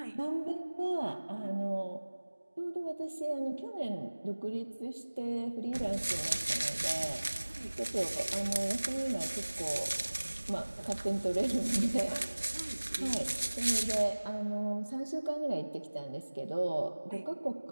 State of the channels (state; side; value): inverted; both; correlation -1.00